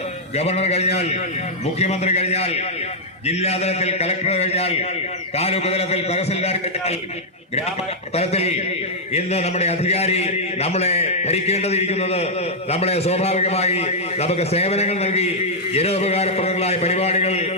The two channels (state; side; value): normal; both; correlation -0.05